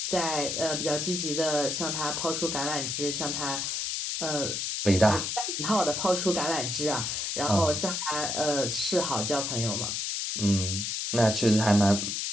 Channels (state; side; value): noise; left; hiss, 2 dB below the sound